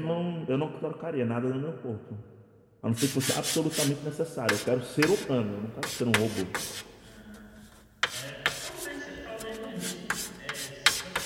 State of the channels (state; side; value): identical; both; correlation 1.00